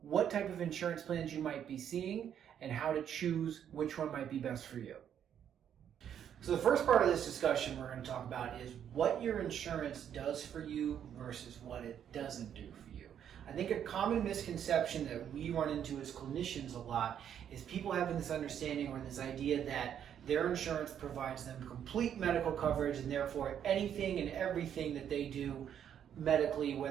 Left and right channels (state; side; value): quieter; left; 9.2 dB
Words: what type of insurance plans you might be seeing and how to choose which one might be best for you. So the first part of this discussion we're going to talk about is what your insurance does for you versus what it doesn't do for you. I think a common misconception that we run into as clinicians a lot is people having this understanding or this idea that their insurance provides them complete medical coverage, and therefore anything and everything that they do medically,